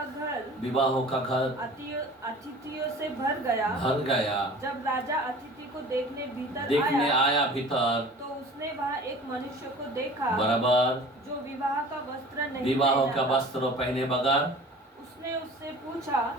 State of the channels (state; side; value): normal; both; correlation 0.43